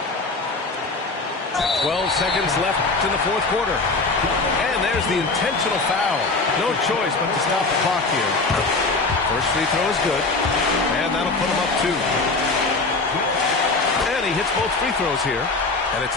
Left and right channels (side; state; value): right; quieter; 3.6 dB